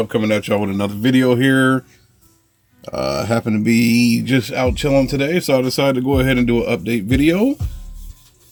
coming at y'all with another video here. Happen to be just out chilling today, so I decided to go ahead and do an update video.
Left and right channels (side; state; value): both; identical; correlation 1.00